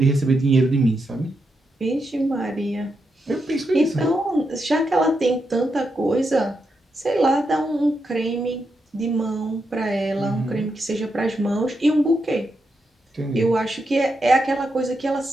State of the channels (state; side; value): normal; both; correlation 0.84